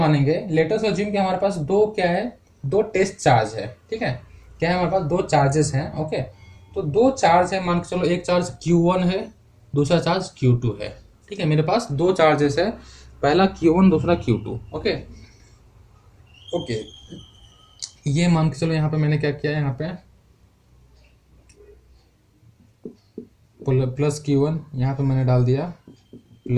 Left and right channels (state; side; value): identical; both; correlation 1.00